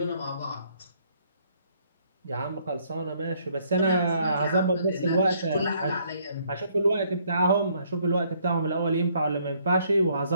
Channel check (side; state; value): both; inverted; correlation -0.67